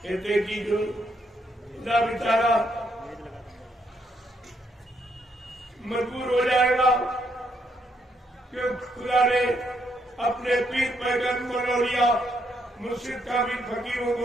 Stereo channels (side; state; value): both; normal; correlation 0.75